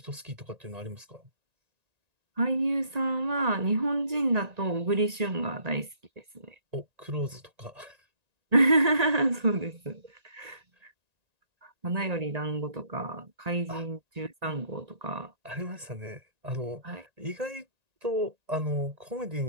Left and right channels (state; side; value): late; left; 1.9 ms